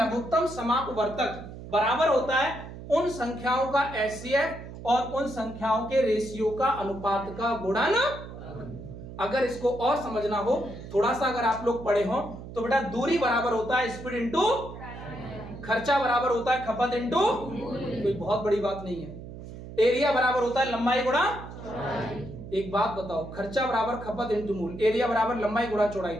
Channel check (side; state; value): right; noise; hum, 12 dB below the sound